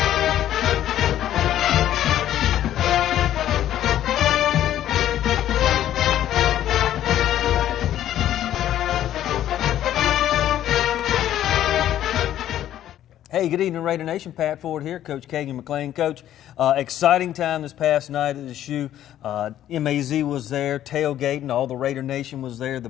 Hey, good evening, Raider Nation. Pat Ford here, Coach Kagan McLean. Coach, exciting time this past night at the shoe. MAZ was there, tailgating, all the Raider Nation was there,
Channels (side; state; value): right; quieter; 11.9 dB